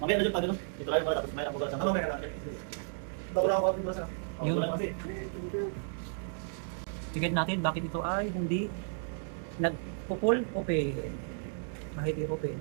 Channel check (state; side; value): silent; left; digital silence